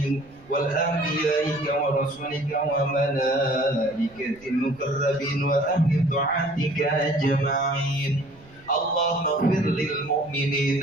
wal anbiya'i wa rasulika wa malaikatil mukarrabin wa ahli ta'atika ajma'in. Allahumma ighfir lil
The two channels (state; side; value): noise; right; rumble, 26 dB below the sound